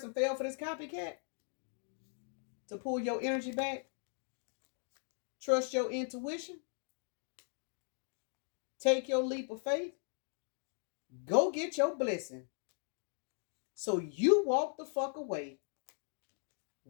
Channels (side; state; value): right; silent; 52 dB below the other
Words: fell for this copycat to pull your energy back. Trust your intuition. Take your leap of faith. Go get your blessing. So you walked the fuck away.